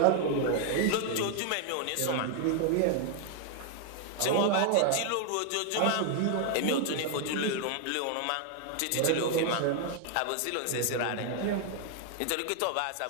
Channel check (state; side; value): different; both; correlation 0.00